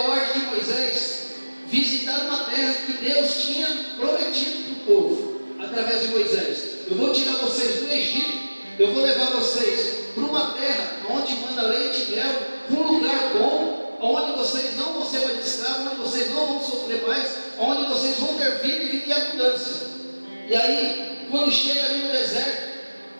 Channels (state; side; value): inverted; both; correlation -1.00